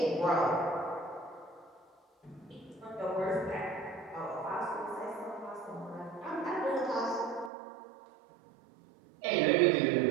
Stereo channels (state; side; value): drops out; left; at 7.5 s